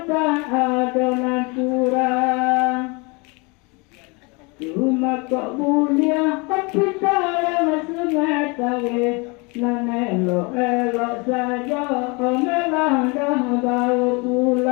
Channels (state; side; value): quieter; right; 29.1 dB